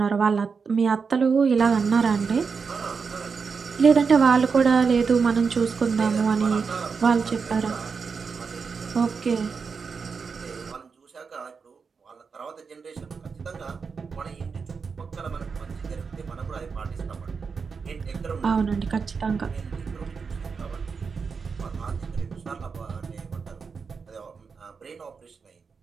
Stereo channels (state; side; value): quieter; left; 5.4 dB